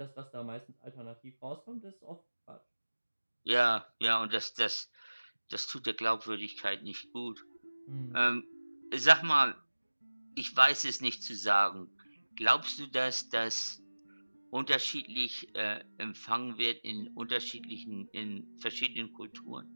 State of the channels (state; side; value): inverted; both; correlation -1.00